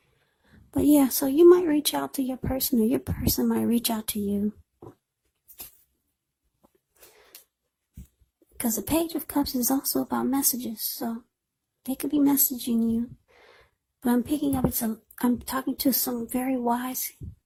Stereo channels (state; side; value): identical; both; correlation 1.00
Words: But yeah, so you might reach out to your person, or your person might reach out to you. Because the Page of Cups is also about messages, so they could be messaging you. But I'm picking up, I'm talking to some very wise